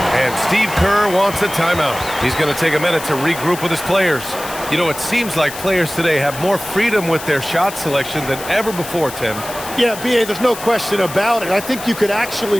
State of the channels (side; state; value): left; noise; hiss, 12 dB below the sound